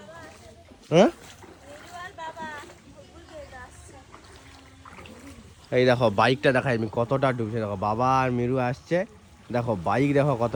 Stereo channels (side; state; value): both; identical; correlation 1.00